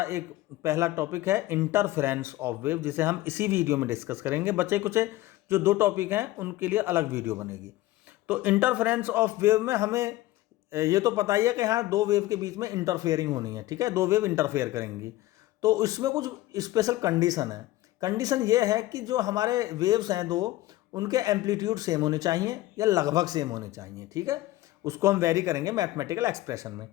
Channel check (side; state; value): right; quieter; 16.8 dB